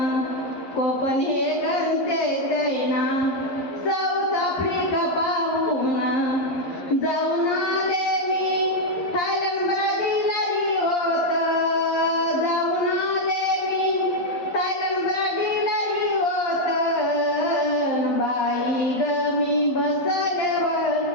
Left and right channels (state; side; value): late; right; 11 ms